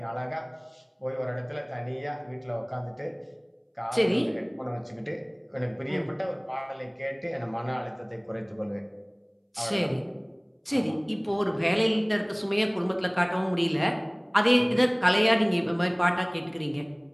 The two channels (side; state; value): both; identical; correlation 1.00